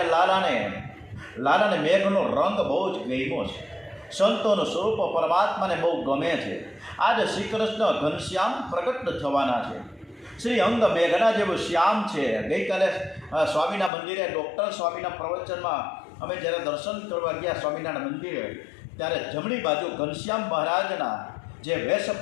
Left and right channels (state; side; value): drops out; right; at 13.9 s